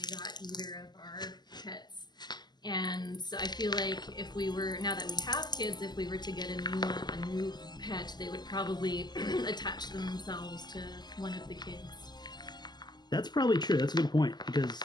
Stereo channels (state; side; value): late; right; 0.21 ms